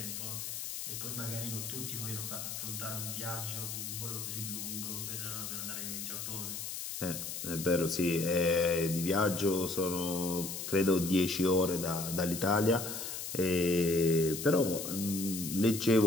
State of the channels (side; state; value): left; noise; hiss, 6 dB below the sound